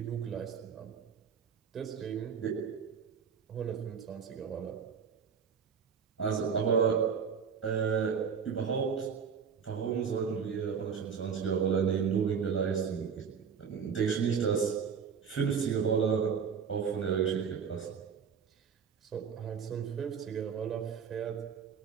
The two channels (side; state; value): left; quieter; 6.7 dB